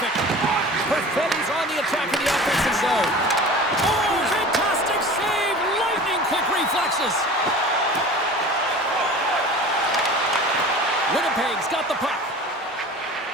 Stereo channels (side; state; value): both; normal; correlation 0.39